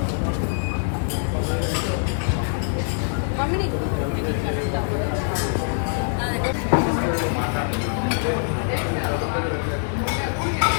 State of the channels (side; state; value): right; silent; digital silence